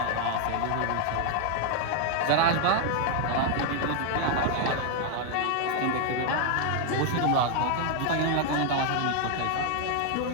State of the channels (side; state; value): both; different; correlation 0.00